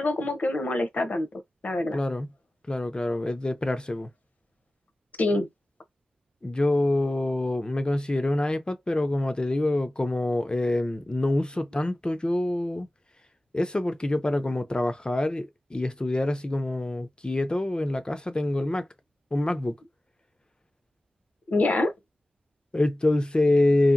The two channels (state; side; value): normal; both; correlation 0.96